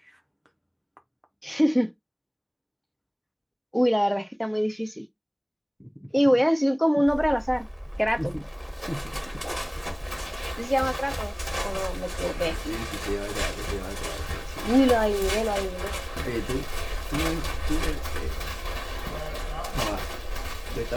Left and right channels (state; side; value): identical; both; correlation 1.00